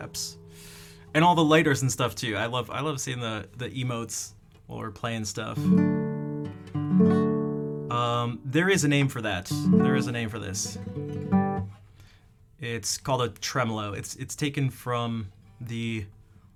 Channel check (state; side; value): identical; both; correlation 1.00